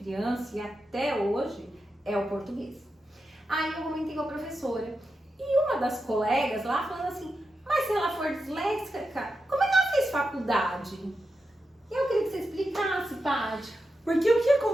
e até hoje é o português. Aí eu comentei com a professora. E uma das colegas lá falando assim, mas se ela for disléxica, como é que ela fez faculdade? Eu queria que você explicasse, Paty. Porque o que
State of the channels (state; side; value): normal; both; correlation 0.88